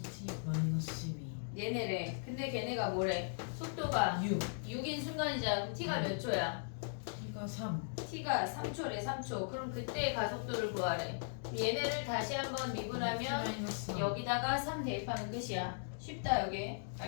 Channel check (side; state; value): right; silent; digital silence